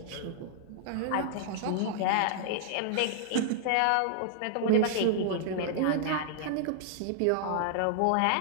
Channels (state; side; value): different; both; correlation -0.01